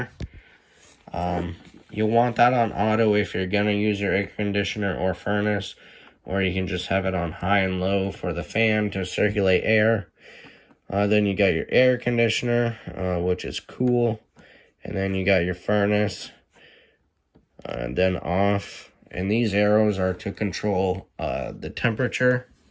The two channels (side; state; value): both; identical; correlation 1.00